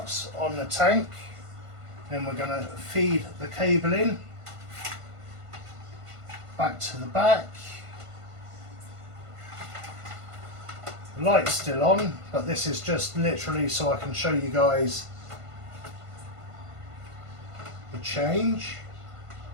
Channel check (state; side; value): late; left; 1.5 ms